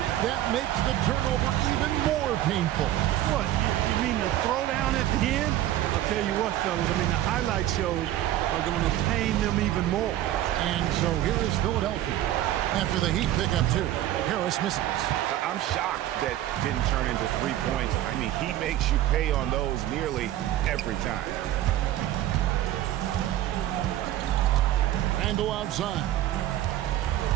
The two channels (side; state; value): left; quieter; 13.3 dB